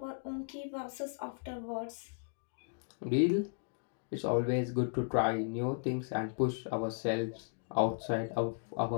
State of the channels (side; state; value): right; silent; digital silence